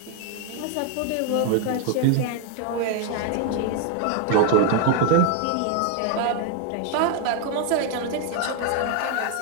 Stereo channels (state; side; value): different; both; correlation 0.01